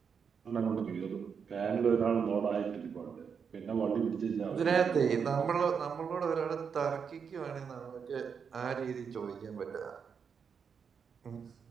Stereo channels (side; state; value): left; quieter; 6.5 dB